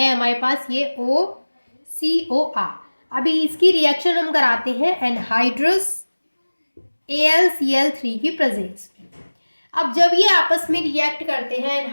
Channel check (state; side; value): inverted; both; correlation -1.00